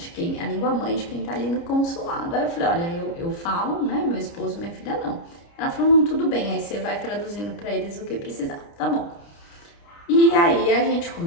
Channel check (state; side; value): late; right; 29 ms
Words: a língua mãe de quem tá ali no consulado. Aí eu falei, olha, eu falo, né, meu esposo e minha filha não. Ela falou, não, tudo bem, aí você vai traduzindo para eles o que precisar, tá bom. E aí a gente